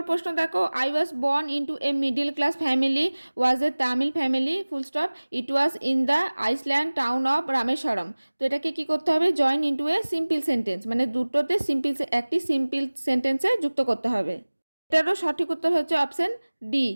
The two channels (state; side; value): inverted; both; correlation -1.00